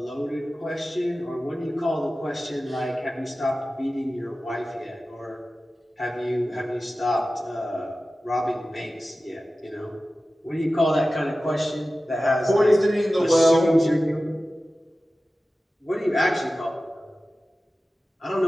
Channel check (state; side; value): normal; both; correlation 0.95